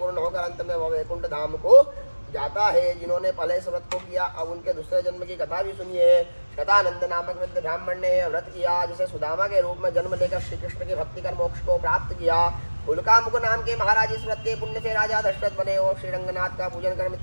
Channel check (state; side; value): inverted; both; correlation -1.00